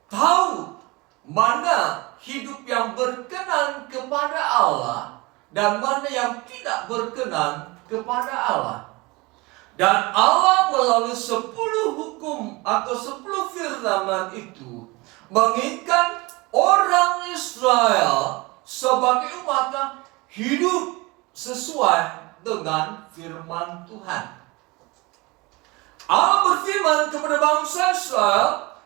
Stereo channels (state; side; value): quieter; left; 24.1 dB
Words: tahu mana hidup yang berkenan kepada Allah dan mana yang tidak berkenan kepada Allah. Dan Allah melalui 10 hukum atau 10 firman itu menginginkan orang Israel sebagai umatnya hidup sesuai dengan firman Tuhan. Allah berfirman kepada bangsa